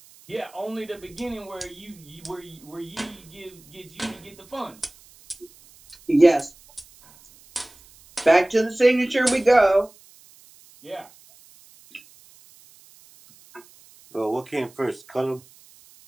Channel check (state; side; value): noise; right; hiss, 26 dB below the sound